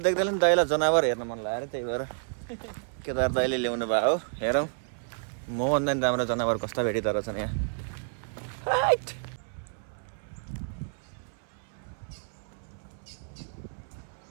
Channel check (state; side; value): silent; left; 58 dB below the other